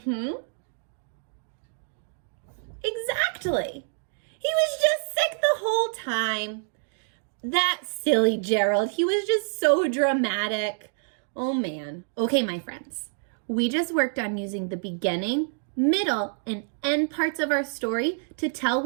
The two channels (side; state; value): left; silent; digital silence